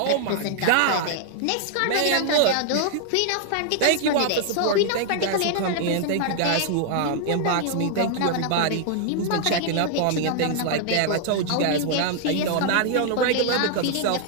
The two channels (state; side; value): different; both; correlation 0.00